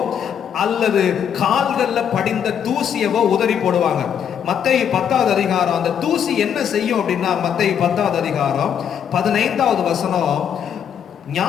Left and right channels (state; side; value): quieter; right; 8.4 dB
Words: அல்லது கால்கள்ல படிந்த தூசியவோ உதறி போடுவாங்க. மத்தேயு 10வது அதிகாரம் அந்த தூசி என்ன செய்யும் அப்படின்னா, மத்தேயு 10வது அதிகாரம் 15வது வசனம்,